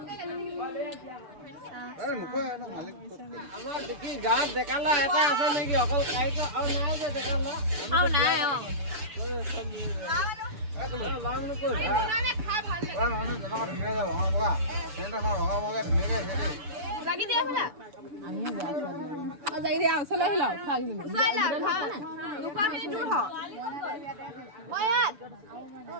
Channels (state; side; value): late; left; 6.9 ms